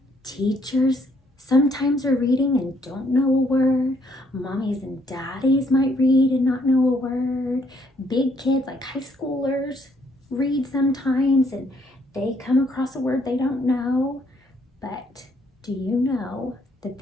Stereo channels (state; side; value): normal; both; correlation 0.68